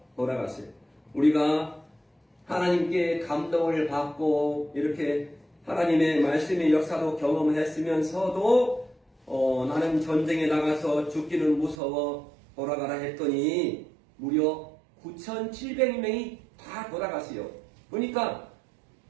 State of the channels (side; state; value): left; drops out; at 11.8 s